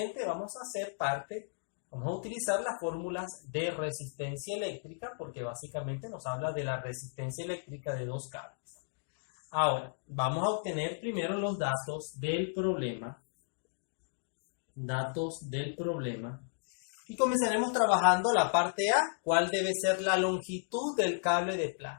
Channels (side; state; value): right; silent; digital silence